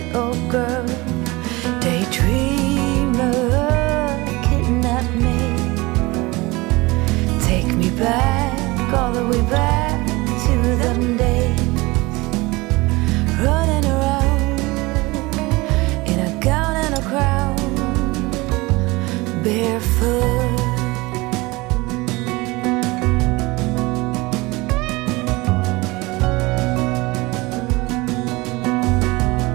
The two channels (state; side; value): quieter; left; 22.7 dB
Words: girl, daydreamer, kidnap me, take me back, all the way back to them days, running around in a gown and a crown, barefoot.